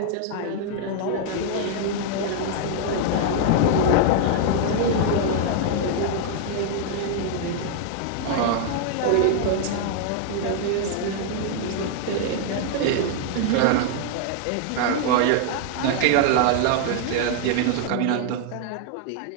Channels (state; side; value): different; both; correlation 0.00